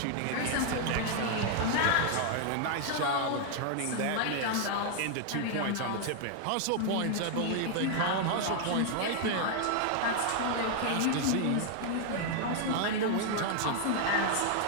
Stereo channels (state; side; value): different; both; correlation 0.00